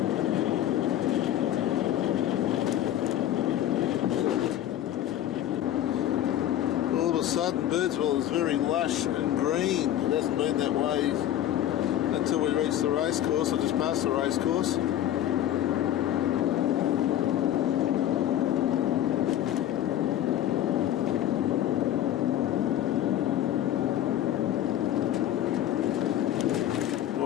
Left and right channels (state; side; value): quieter; right; 11.9 dB